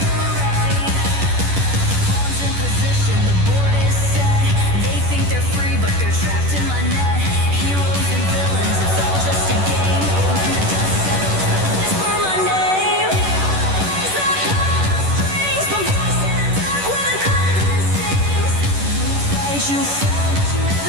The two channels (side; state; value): left; late; 11 ms